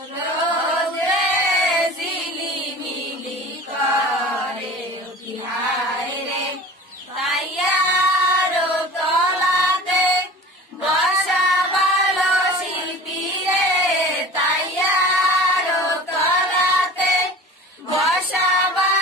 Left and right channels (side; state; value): both; normal; correlation 0.39